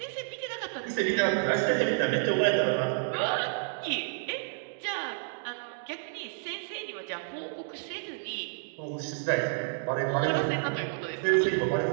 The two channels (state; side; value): silent; left; digital silence